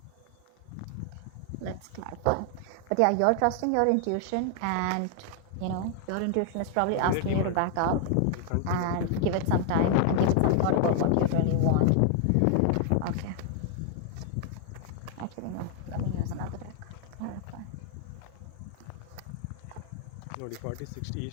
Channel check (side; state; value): both; different; correlation 0.00